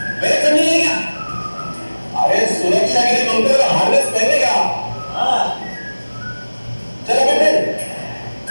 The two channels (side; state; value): both; inverted; correlation -1.00